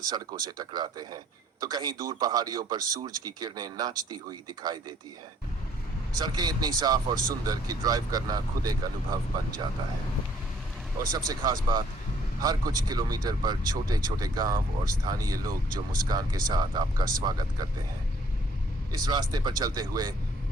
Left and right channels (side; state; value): both; normal; correlation 0.61